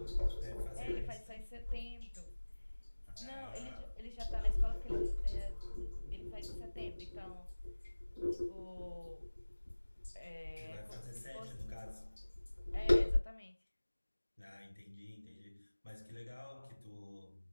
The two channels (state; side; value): inverted; both; correlation -1.00